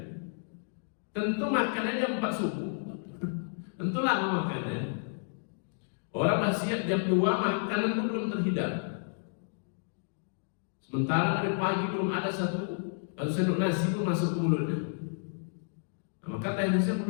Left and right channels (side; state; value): right; silent; digital silence